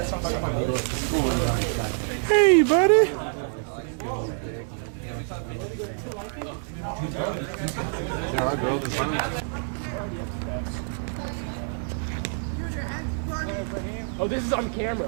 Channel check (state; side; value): silent; left; digital silence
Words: what I'm saying. Hey, buddy. Oh, this is on